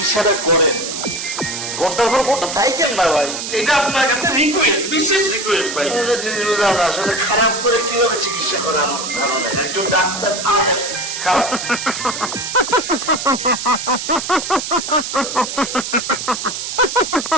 করেন। ঘন্টার পর ঘন্টা থাকেন না ভাই, এটা আপনার কাছে রিকোয়েস্ট, বিশেষ রিকোয়েস্ট ভাই। একটা জিনিস বুঝলাম না, আসলে খারাপ করে কিভাবে চিকিৎসা করে আমার ধারণা একজন ডাক্তার খারাপ।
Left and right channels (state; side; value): noise; right; hiss, 5 dB below the sound